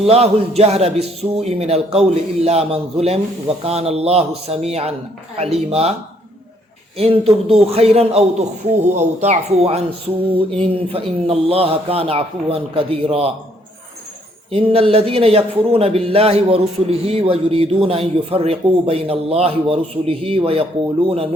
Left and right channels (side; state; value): both; normal; correlation 0.67